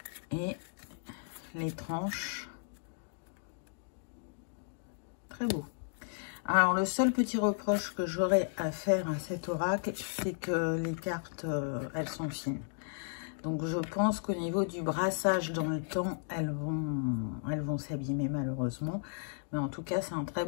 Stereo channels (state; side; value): silent; right; digital silence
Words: Et les tranches, très beau. Alors, le seul petit reproche que j'aurais à faire à cet oracle, c'est que les cartes, elles sont fines. Donc, je pense qu'au niveau du brassage dans le temps, elles vont s'abîmer malheureusement. Mais en tout cas, c'est un très